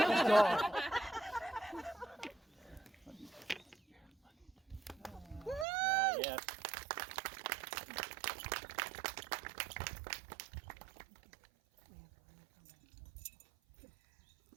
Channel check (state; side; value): drops out; left; at 5.7 s